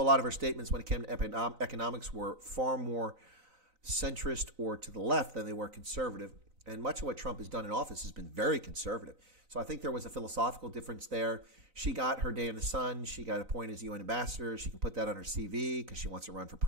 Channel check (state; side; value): late; left; 3.9 ms